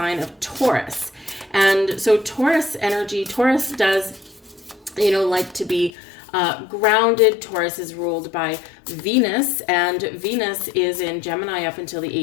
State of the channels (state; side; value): drops out; right; at 5.9 s